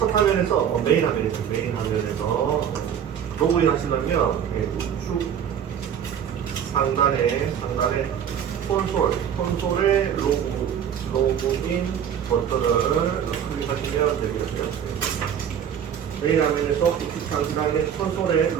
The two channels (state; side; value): quieter; left; 8.7 dB